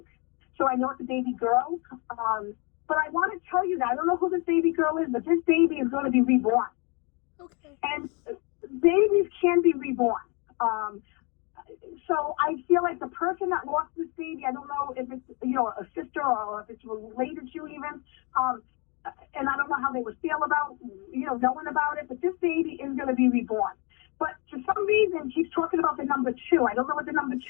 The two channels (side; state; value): right; quieter; 31.9 dB